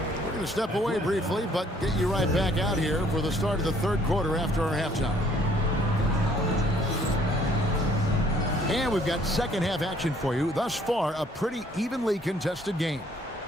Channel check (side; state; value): both; normal; correlation 0.62